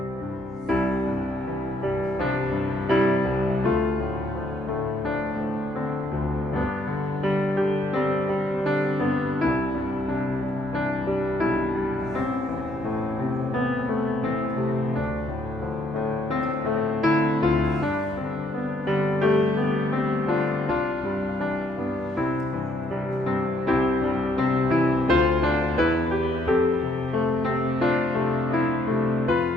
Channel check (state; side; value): normal; both; correlation 0.69